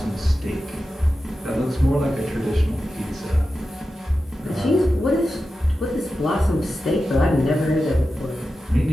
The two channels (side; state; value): both; normal; correlation 0.92